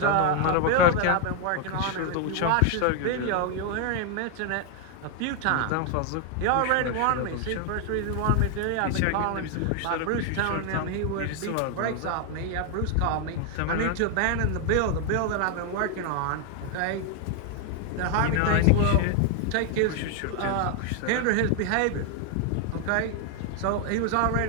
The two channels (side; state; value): both; different; correlation 0.00